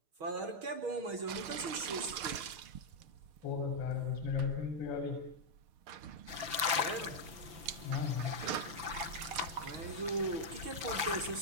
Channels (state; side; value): late; left; 5.9 ms